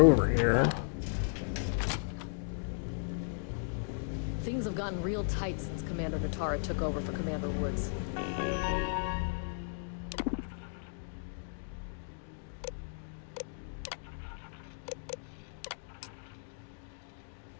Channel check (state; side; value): silent; right; digital silence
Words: here. Things have gotten real tight since Commander Natara took over for Commander Woods.